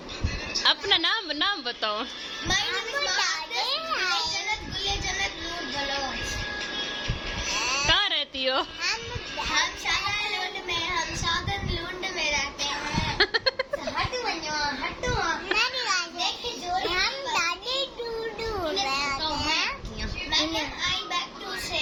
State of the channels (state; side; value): identical; both; correlation 1.00